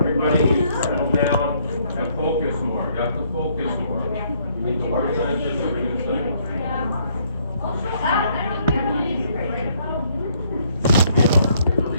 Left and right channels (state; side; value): inverted; both; correlation -0.67